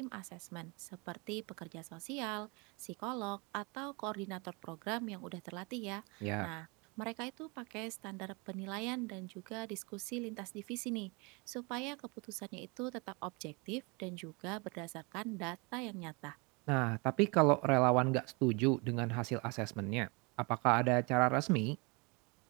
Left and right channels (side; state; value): left; quieter; 29.4 dB